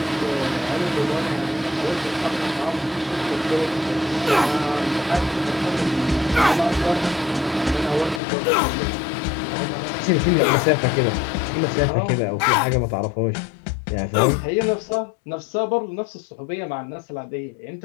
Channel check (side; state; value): right; drops out; at 8.2 s